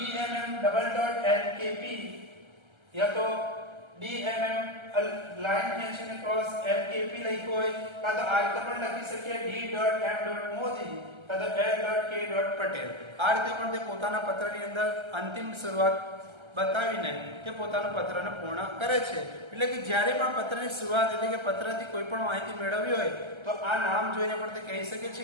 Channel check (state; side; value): late; left; 1.3 ms